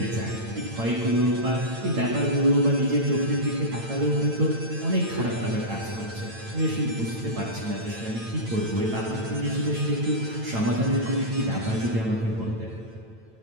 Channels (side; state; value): left; late; 8.9 ms